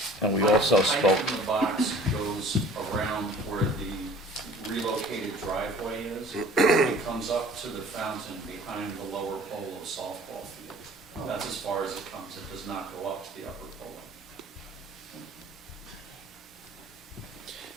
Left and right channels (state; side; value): normal; both; correlation 0.48